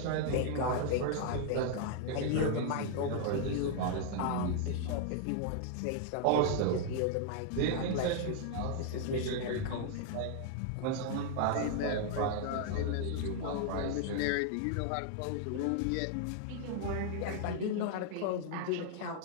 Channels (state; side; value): different; both; correlation -0.01